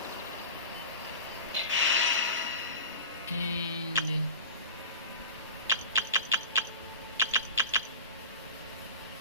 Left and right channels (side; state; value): both; inverted; correlation -0.32